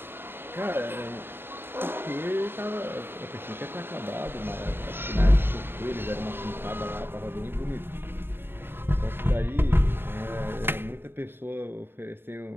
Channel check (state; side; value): late; left; 0.10 ms